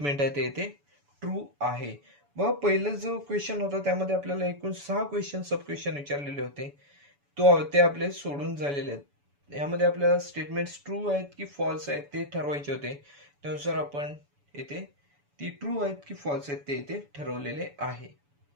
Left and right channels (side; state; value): left; late; 7.0 ms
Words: आहे ते इथे ट्रू आहे. बघा पहिला जो क्वेश्चन होता त्यामध्ये आपल्याला एकूण 6 क्वेश्चन सब क्वेश्चन विचारलेले होते, ते आपले सोडून झालेले आहेत. यामध्ये आपल्याला स्टेटमेंट्स ट्रू आहेत की फॉल्स आहेत ते ठरवायचे होते. त्यानुसार आपण येथे ती ट्रू आहेत की फॉल्स आहेत ते इथे ठरवलेले आहे.